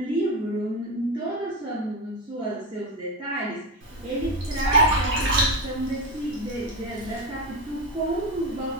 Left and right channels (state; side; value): normal; both; correlation 0.17